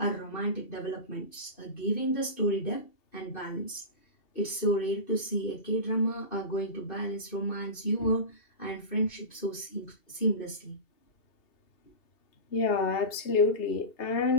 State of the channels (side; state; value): right; late; 2.7 ms